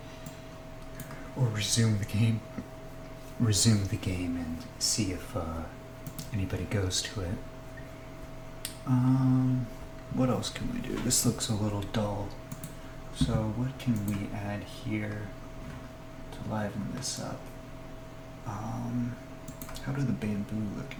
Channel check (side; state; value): both; identical; correlation 1.00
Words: or resume the game and see if anybody goes to it. What else can we do? This looks a little dull. So what can we add here to liven this up? How do the bamboo look